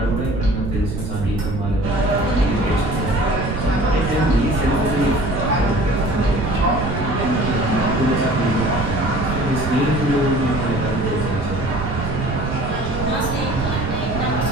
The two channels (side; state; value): right; noise; rumble, 4 dB below the sound